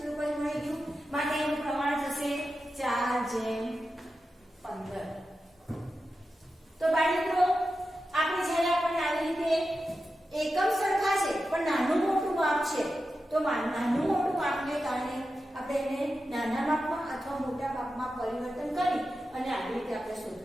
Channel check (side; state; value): both; normal; correlation 0.91